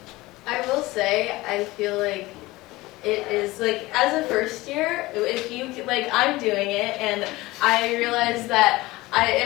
I will say, I feel like it is like, as a first year, if you, like, I'm doing it, and I realize that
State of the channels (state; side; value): quieter; right; 19.9 dB